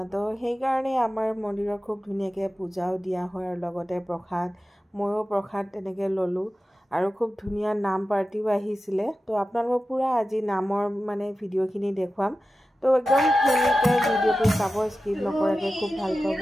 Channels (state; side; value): normal; both; correlation 0.94